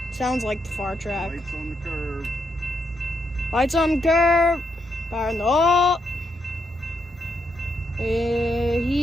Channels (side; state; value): both; normal; correlation 0.79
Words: Sounds like the far track. Lights on the curve. Lights on the curve. Fire in the hole.